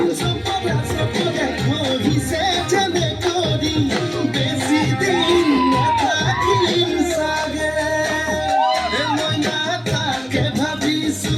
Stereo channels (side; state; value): both; identical; correlation 1.00